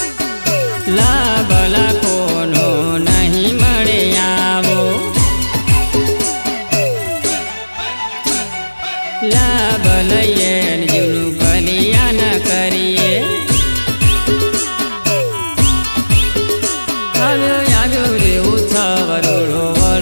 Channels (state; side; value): inverted; both; correlation -1.00